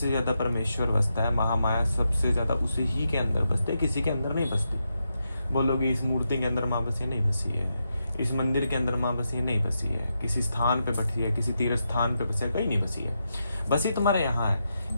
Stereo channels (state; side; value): inverted; both; correlation -0.85